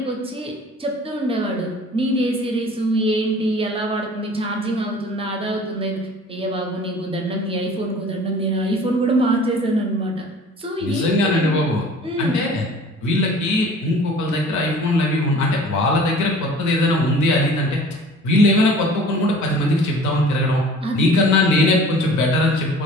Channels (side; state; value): both; normal; correlation 0.47